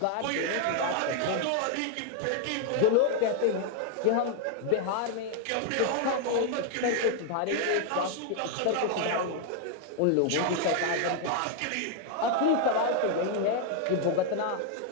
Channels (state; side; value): different; both; correlation 0.00